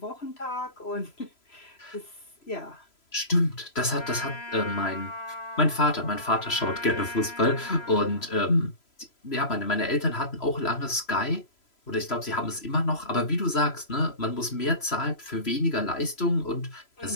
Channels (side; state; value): right; late; 3.0 ms